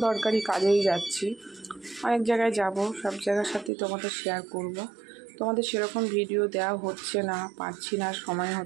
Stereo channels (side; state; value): left; drops out; at 3.7 s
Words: দরকারি কাজেই যাচ্ছি, অনেক জায়গায় যাব, সব জায়গার সাথেই তোমাদের শেয়ার করব। তোমাদের সেরকম ভিডিও দেওয়া হচ্ছে না, পারছি না, সময়